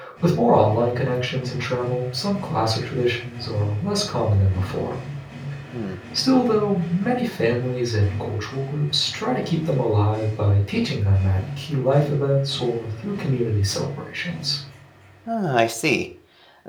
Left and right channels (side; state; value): both; identical; correlation 1.00